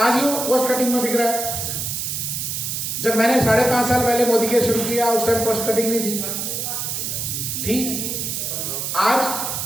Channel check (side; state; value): right; noise; hiss, 3 dB below the sound